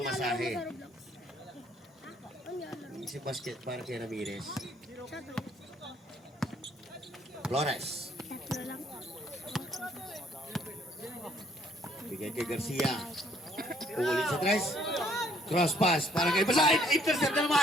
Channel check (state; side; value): normal; both; correlation 0.64